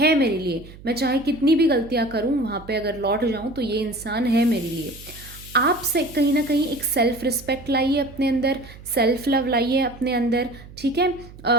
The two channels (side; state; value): right; noise; hum, 18 dB below the sound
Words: मेरे लिए, मैं चाहे कितनी भी गलतियाँ करूँ, वहाँ पे अगर लौट जाऊँ तो ये इंसान है मेरे लिए। आप से कहीं ना कहीं एक सेल्फ रिस्पेक्ट लाइए अपने अंदर, सेल्फ लव लाइए अपने अंदर, ठीक है।